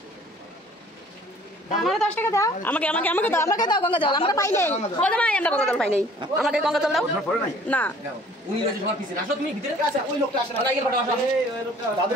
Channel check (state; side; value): normal; both; correlation 0.54